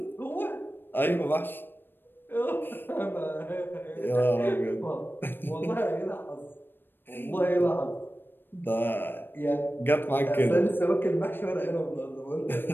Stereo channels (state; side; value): late; right; 0.097 ms